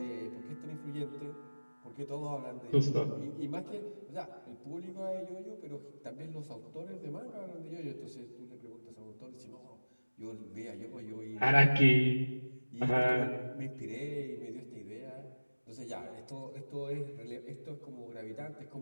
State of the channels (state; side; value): inverted; both; correlation -1.00